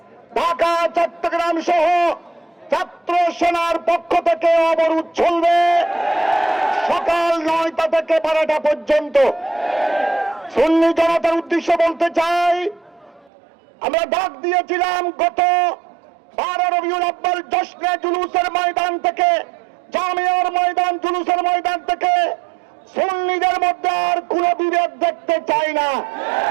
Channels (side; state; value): left; drops out; at 13.3 s